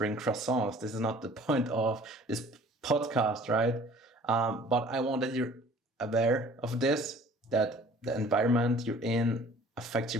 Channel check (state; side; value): normal; both; correlation 0.51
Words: croissants. This is not the point of this podcast, right? But I want that you're aware of this, that the environment you're in affects